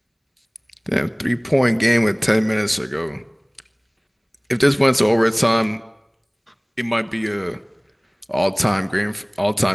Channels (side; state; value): both; identical; correlation 1.00